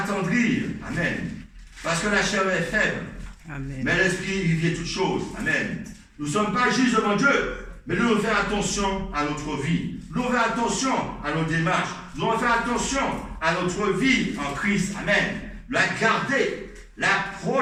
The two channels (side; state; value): both; identical; correlation 1.00